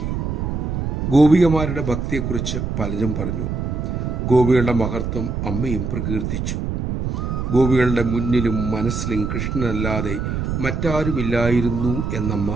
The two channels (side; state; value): right; noise; rumble, 2 dB below the sound